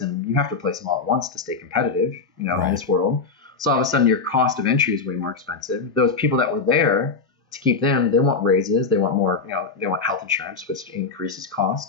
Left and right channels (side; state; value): right; quieter; 4.6 dB